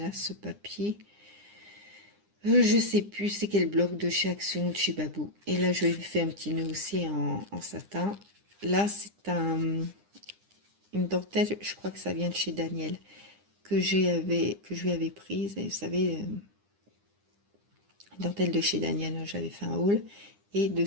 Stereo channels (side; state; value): left; late; 9.9 ms